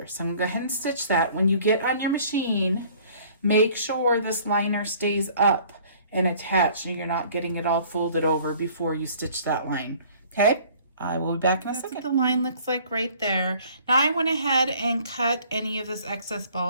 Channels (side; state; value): both; inverted; correlation -0.53